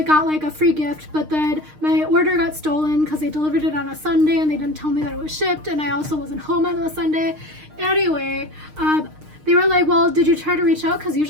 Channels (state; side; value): late; left; 6.5 ms